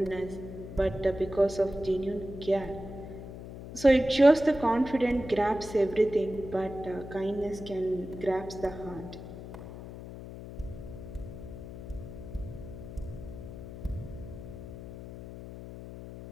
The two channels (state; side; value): noise; left; hum, 11 dB below the sound